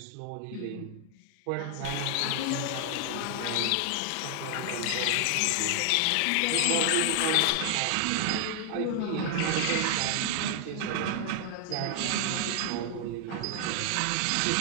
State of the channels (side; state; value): both; different; correlation 0.00